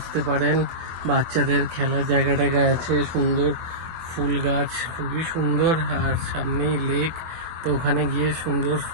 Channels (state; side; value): late; left; 24 ms